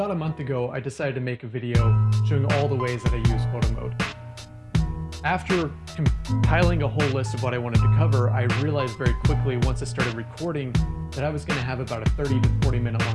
a month ago, I decided to make a video showing all the ways that I use Photomode. After compiling a whole list of what I wanted to cover, I realized very quickly once I started recording that I was going to have about a 30 to 40 minute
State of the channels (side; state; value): both; identical; correlation 1.00